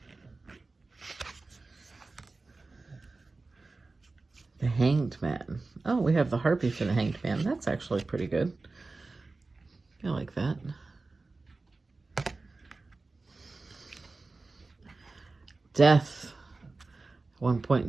The Hanged Man. Oh, we have the Harpy for the Hanged Man. That's actually pretty good. I like that. Death. At one point in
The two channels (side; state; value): left; quieter; 3.6 dB